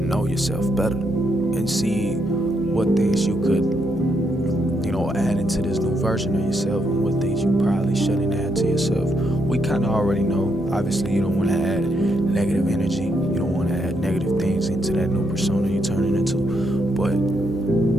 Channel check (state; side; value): noise; right; hum, 19 dB below the sound